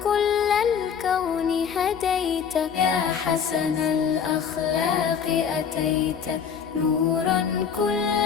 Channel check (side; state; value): right; quieter; 7.2 dB